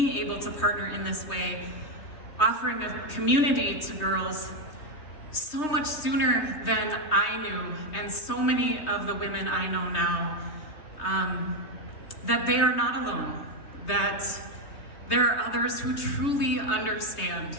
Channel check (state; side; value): late; right; 3.2 ms